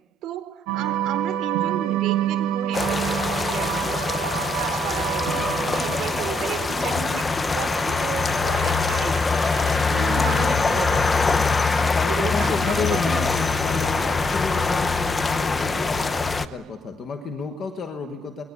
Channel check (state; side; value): normal; both; correlation 0.75